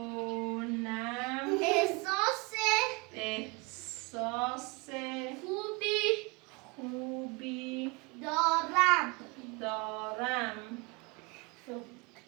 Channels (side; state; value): left; quieter; 27.6 dB